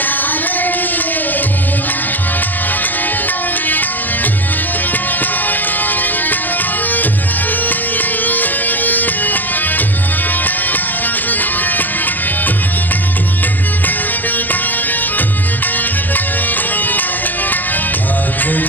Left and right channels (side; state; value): right; late; 0.086 ms